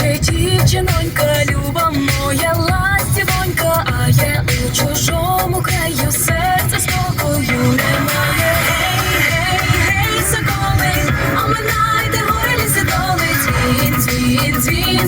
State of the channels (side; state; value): both; identical; correlation 1.00